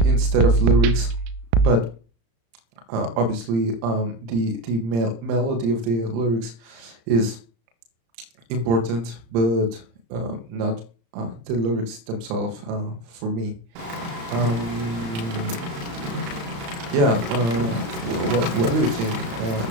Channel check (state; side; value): late; left; 35 ms